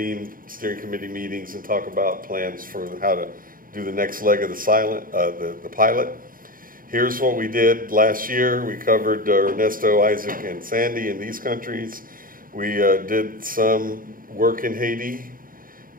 steering committee meetings and talk about plans for how to do the next leg of the pilot. Here's what we did last year. We covered Ernesto, Isaac, and Sandy in these countries. We did some work in Haiti.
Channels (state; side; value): late; left; 0.41 ms